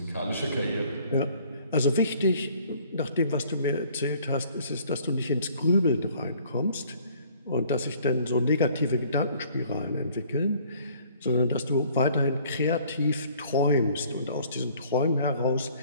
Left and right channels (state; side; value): inverted; both; correlation -0.57